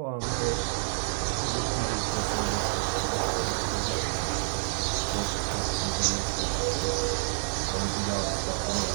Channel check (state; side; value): silent; left; digital silence